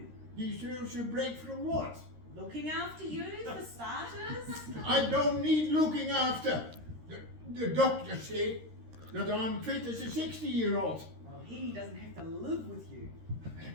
Deserves a break from what? Looking after you, for starters. I don't need looking after. The doctor said that I'm fit as a 60-year-old. Well, he doesn't have to live with you.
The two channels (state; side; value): late; left; 13 ms